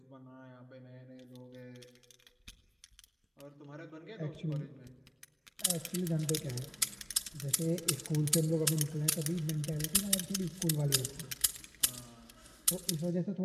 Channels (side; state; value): both; identical; correlation 1.00